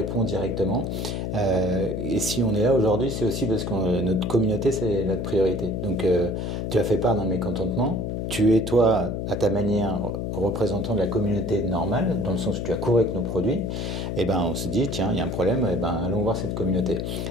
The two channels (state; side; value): noise; left; hum, 3 dB below the sound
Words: directement. Et si on est là aujourd'hui, c'est aussi parce que notre communauté, c'est notre priorité. Donc, tu as fait part d'un mécontentement. Tu es, toi, à ta manière, représentant de la communauté normale, dans le sens où tu as couru avec nos produits. Et on se dit, tiens, il y a un problème, allons voir cette communauté.